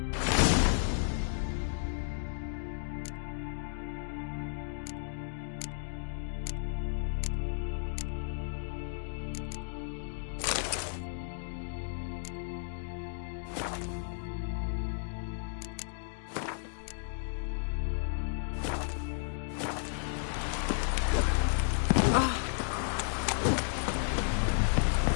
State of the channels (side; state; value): right; silent; digital silence